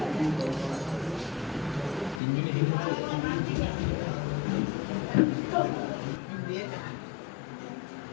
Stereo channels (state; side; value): drops out; right; at 2.2 s